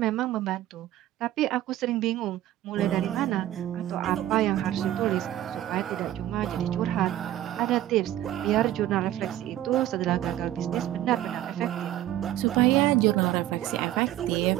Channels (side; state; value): left; quieter; 13.3 dB